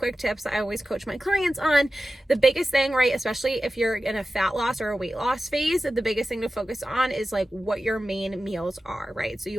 tips I always coach my clients on. The biggest thing, right, especially if you're in a fat loss or a weight loss phase, the biggest thing to focus on is like what your main meals are, right? So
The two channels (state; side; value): normal; both; correlation 0.94